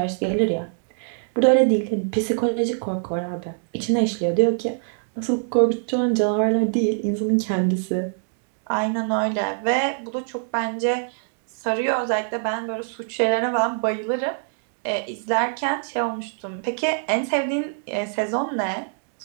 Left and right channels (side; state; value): left; silent; digital silence